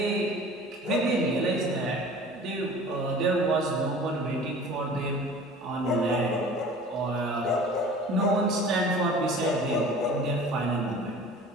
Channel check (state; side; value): normal; both; correlation 0.43